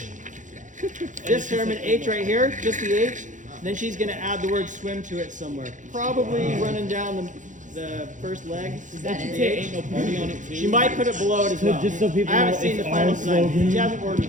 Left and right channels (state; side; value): late; left; 0.36 ms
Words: This Herriman H right here, just the H. Then she's gonna add the word swim to it somewhere. Probably running down the first leg. Ain't no party on it too. She might put it below it as well. Just so people I haven't know seen the it's final our design. slogan. She hasn't